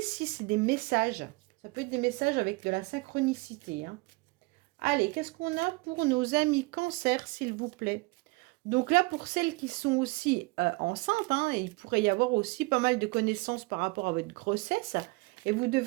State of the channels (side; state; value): left; quieter; 25.6 dB